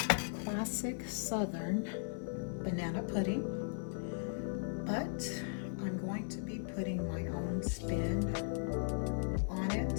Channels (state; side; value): silent; right; digital silence